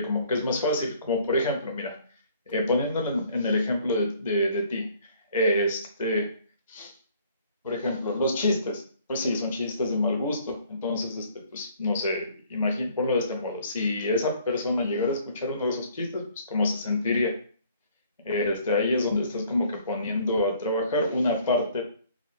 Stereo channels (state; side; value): inverted; both; correlation -0.58